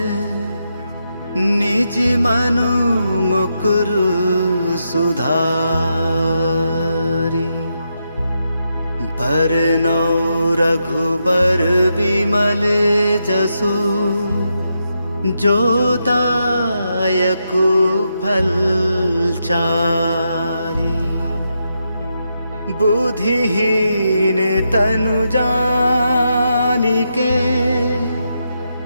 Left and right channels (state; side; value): inverted; both; correlation -0.83